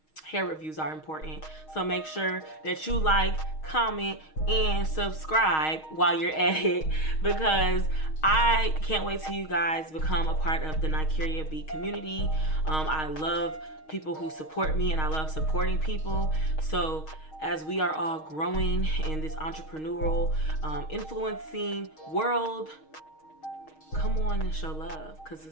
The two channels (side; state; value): right; late; 6.4 ms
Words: hair reviews are important. So make sure that you like, comment, and subscribe while you're at it, because I can't wait till you guys become a part of the Nykieriabllc community. I love people who support me, and I love supporting people. So as we are all growing in this entrepreneurial, influencing world, come on and show love, because